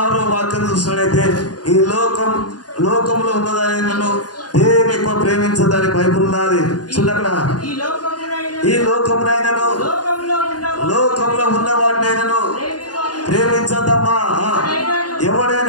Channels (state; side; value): late; right; 0.69 ms